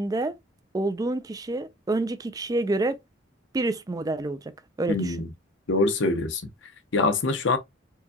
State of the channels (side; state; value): both; normal; correlation 0.43